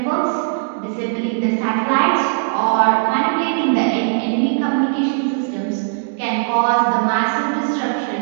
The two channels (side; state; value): left; silent; digital silence